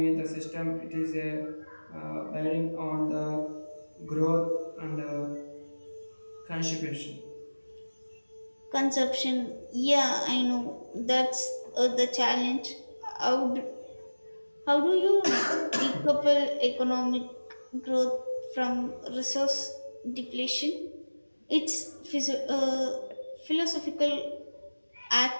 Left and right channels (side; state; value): both; inverted; correlation -1.00